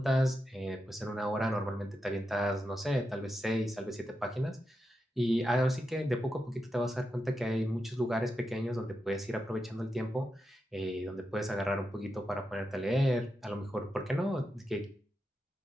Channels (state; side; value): normal; both; correlation 0.87